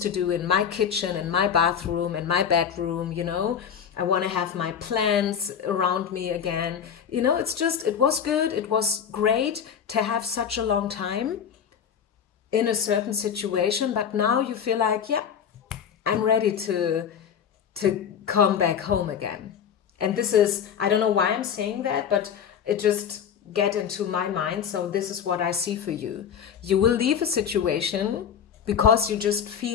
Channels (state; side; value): quieter; right; 8.0 dB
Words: to do in my kitchen, in my bathroom, in my bedroom, you know. I want to have my plants around me again. You know, it's just, it was good. It was great to have such a long time in a certain situation. But now you feel like, yeah, I'm ready to come back home again. And this is, I don't know why I'm saying that, but it just get into my mind. So this is what I see for you. You will leave a situation because you just